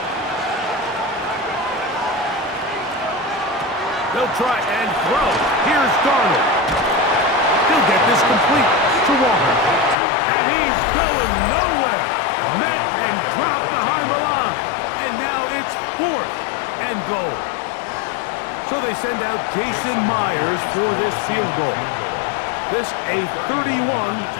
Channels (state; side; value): drops out; right; at 10.0 s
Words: They'll try and throw. Here's Darnold. He'll get this complete to Walker. And he's going nowhere. Met and dropped behind the line. And now it's 4th and goal. So they send out Jason Myers for this field goal. This a